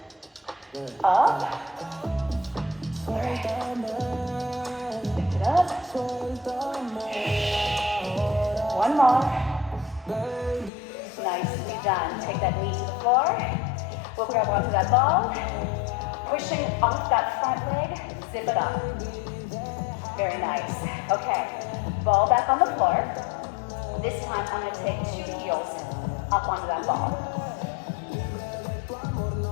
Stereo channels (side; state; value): right; drops out; at 10.7 s